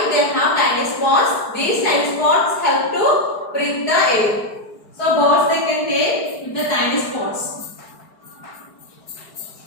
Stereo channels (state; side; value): late; right; 4.8 ms